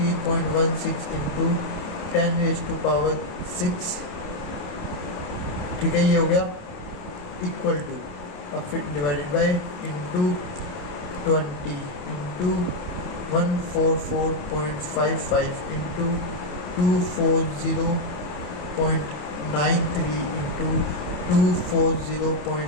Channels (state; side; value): late; right; 28 ms